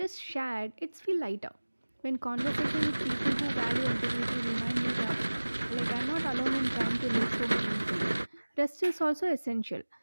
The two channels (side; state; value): both; inverted; correlation -1.00